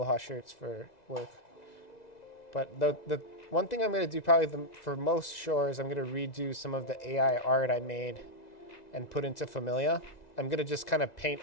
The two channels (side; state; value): right; late; 2.0 ms